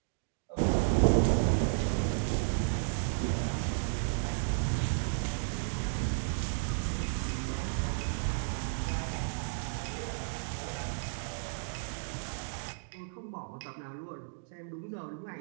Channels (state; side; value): silent; left; digital silence